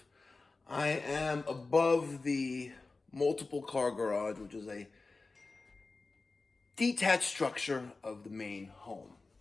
I am above the multiple car garage, which is a detached structure of the main home,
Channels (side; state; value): right; quieter; 3.7 dB